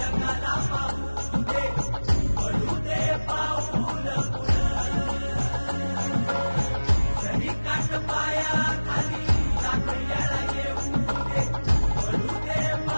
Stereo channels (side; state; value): both; inverted; correlation -1.00